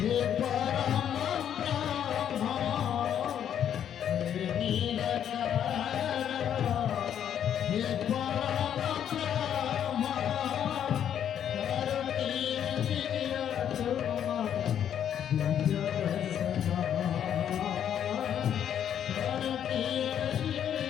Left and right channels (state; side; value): quieter; right; 9.5 dB